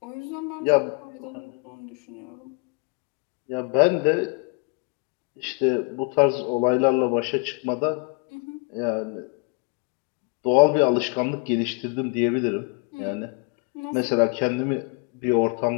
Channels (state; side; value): quieter; right; 34.9 dB